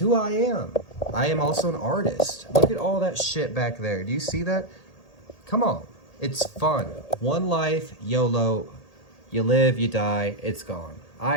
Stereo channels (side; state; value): right; late; 1.8 ms